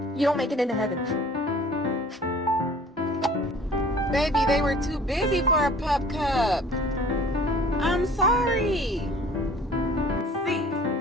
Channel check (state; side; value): normal; both; correlation 0.49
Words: You don't make it into heaven. Baby, they were too busy for a pup cup. I'm sorry. See,